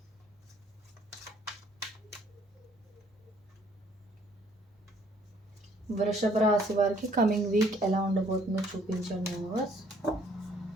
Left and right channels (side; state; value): both; normal; correlation 0.62